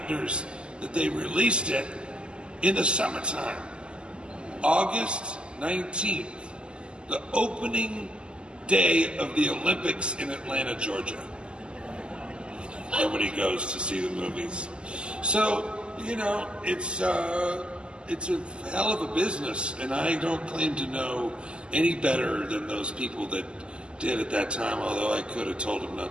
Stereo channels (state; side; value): late; left; 0.050 ms